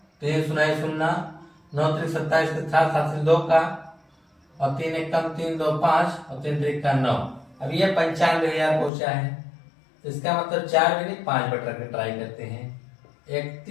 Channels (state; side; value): drops out; right; at 8.9 s